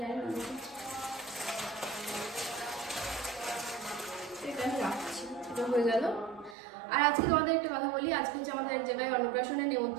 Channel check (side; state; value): left; drops out; at 6.6 s